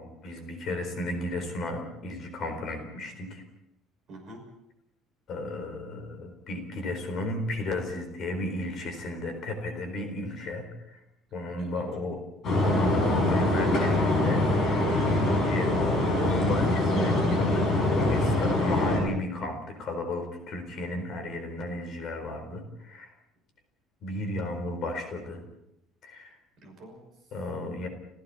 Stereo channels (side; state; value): both; normal; correlation 0.58